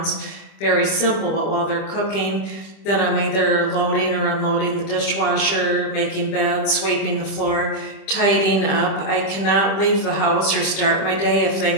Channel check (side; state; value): right; late; 25 ms